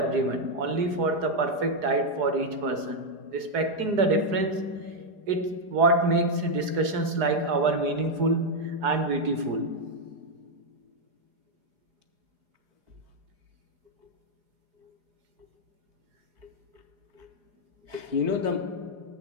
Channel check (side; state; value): left; late; 4.8 ms